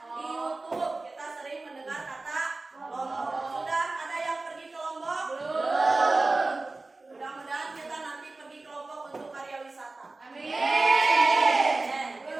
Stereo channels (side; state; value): left; quieter; 3.3 dB